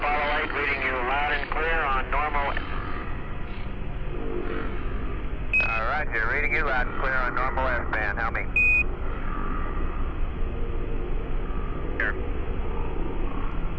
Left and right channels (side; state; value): both; identical; correlation 1.00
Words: 8 reading you loud and clear on normal. Roger, reading you loud and clear on normal S-band. How me? Here.